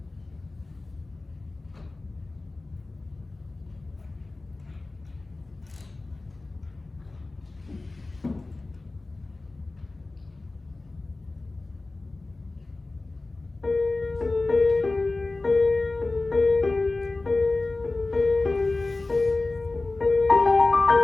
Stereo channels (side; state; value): right; quieter; 3.3 dB